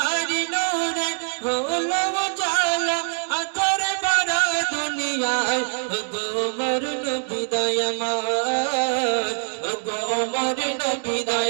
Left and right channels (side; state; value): left; silent; digital silence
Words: নূরে হলো উজালা, আতরে ভরা দুনিয়ায় ও গো মোর নবী দয়াময়, ও গো মোর নবী